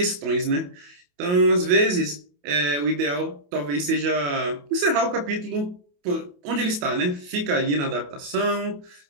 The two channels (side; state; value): left; late; 28 ms